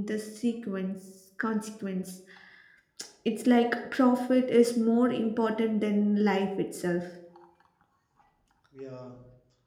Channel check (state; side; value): identical; both; correlation 1.00